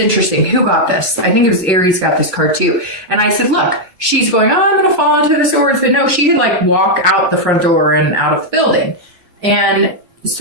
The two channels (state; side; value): late; left; 2.8 ms